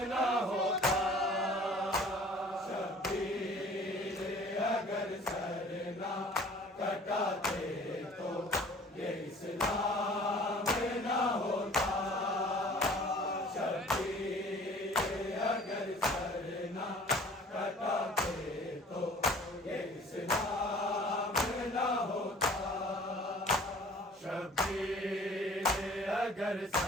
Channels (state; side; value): normal; both; correlation 0.50